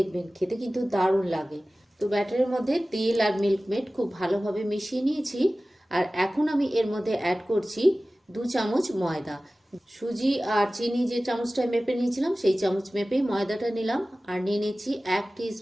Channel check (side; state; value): both; normal; correlation 0.97